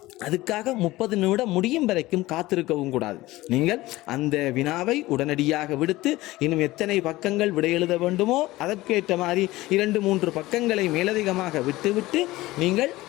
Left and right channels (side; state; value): right; quieter; 18.4 dB